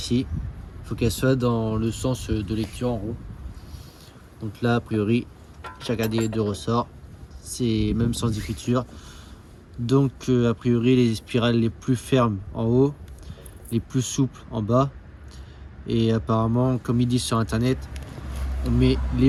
il faut qu'elle soit dans le sens de lecture en haut. Donc là, a priori, chacun des deux ressorts, c'est même sans écriture. Donc a priori, les spirales les plus fermes en haut, les plus souples en bas. Et apparemment, comme ils disent sur internet, on met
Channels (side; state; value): both; identical; correlation 1.00